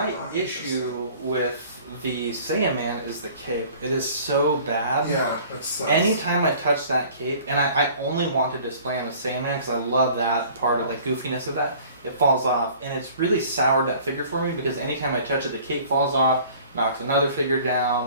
not issue with the Saiyan Man is the cape. It is so bad. interesting. Yeah, it sucks. Anytime I touch that cape, and I only want to display on the Saiyan Man because I love that part of the goofiness of that, it falls off. And it's really soured that figure for me because anytime I touch it, the cape falls off, knocks another figure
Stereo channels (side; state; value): both; inverted; correlation -0.49